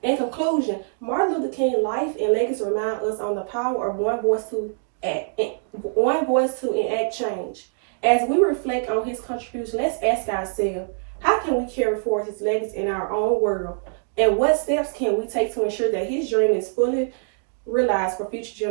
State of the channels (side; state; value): left; silent; digital silence